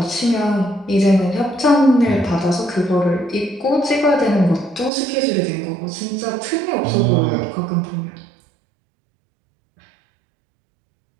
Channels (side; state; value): left; drops out; at 4.9 s